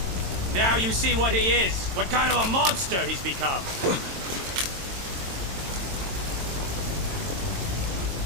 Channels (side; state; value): left; late; 22 ms